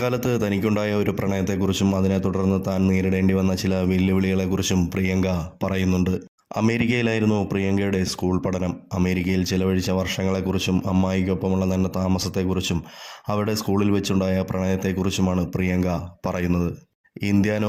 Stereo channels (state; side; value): identical; both; correlation 1.00